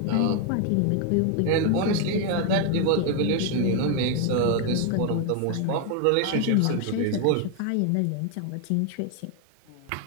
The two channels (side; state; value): both; different; correlation 0.01